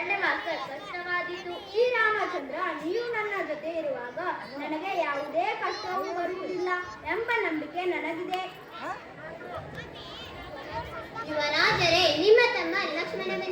ಕಷ್ಟವಾದೀತು. ಶ್ರೀರಾಮಚಂದ್ರ, ನೀವು ನನ್ನ ಜೊತೆ ಇರುವಾಗ ನನಗೆ ಯಾವುದೇ ಕಷ್ಟವೂ ಬರುವುದಿಲ್ಲ ಎಂಬ ನಂಬಿಕೆ ನನಗಿದೆ. ಯುವರಾಜರೇ, ನಿಮ್ಮ ತಮ್ಮ ಲಕ್ಷ್ಮಣ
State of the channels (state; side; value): identical; both; correlation 1.00